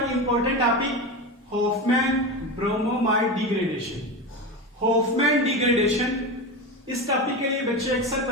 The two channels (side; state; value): both; normal; correlation 0.22